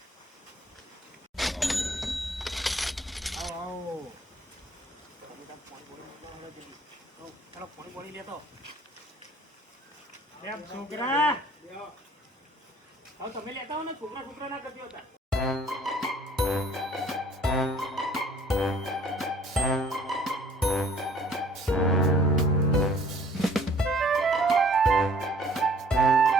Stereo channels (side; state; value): both; normal; correlation 0.56